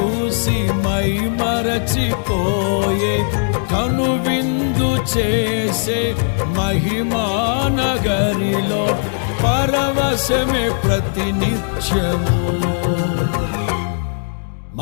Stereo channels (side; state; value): right; silent; digital silence